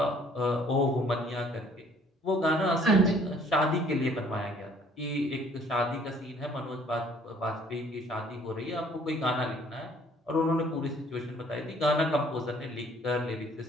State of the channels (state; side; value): normal; both; correlation 0.59